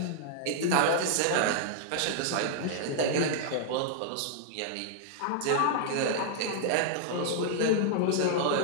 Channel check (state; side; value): different; both; correlation -0.01